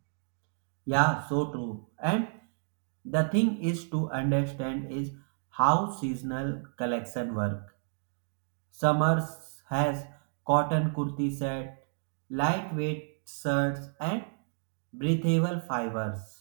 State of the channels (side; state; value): left; silent; digital silence